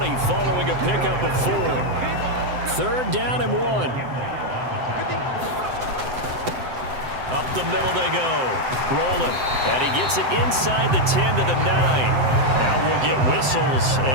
following a pickup of 4. 3rd down and 1. Up the middle they go. Rolling. And he gets it inside the 10 to the 9. Now we'll get whistles,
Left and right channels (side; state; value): left; late; 7.8 ms